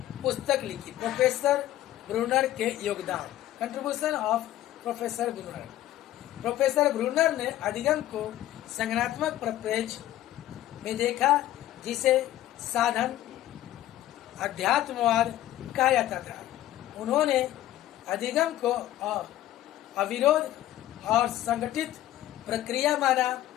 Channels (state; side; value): quieter; right; 13.8 dB